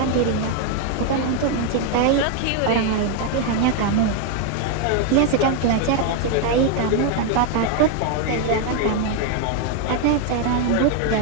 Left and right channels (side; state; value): both; different; correlation 0.01